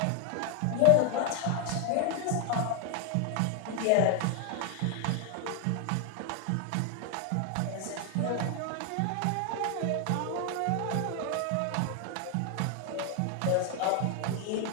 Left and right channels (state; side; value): different; both; correlation 0.00